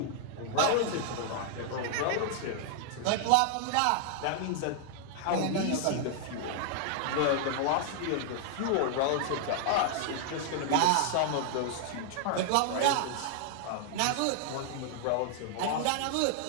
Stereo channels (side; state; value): both; different; correlation 0.00